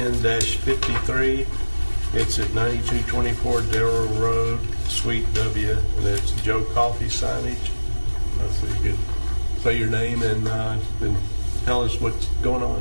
It's at 9224 Darrell Road, Suite W, and it's Joe Coffee signage. So you could say your name and then tell us what's going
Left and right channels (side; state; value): both; inverted; correlation -1.00